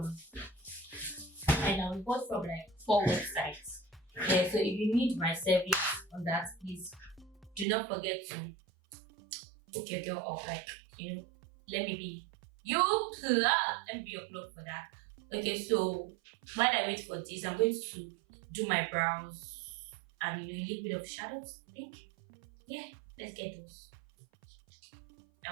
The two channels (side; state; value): left; drops out; at 7.7 s